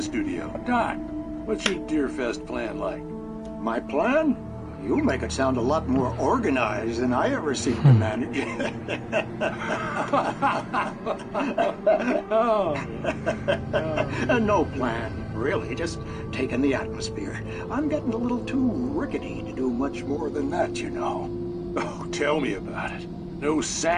studio. Doc, what's your Deerfest plan like? My plan? You make it sound a lot more organized than I ever seem to manage. No plan, really. Just taking the atmosphere. I'm getting a little too rickety to do much more than that, you know. Oh, tell me about it. No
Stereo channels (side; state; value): both; identical; correlation 1.00